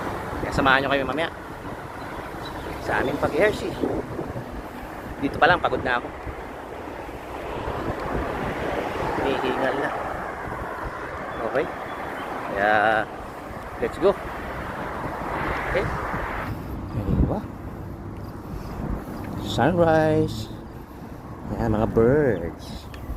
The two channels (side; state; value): both; identical; correlation 1.00